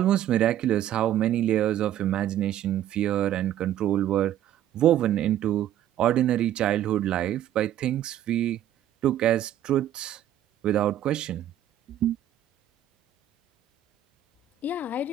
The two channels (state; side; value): quieter; left; 11.4 dB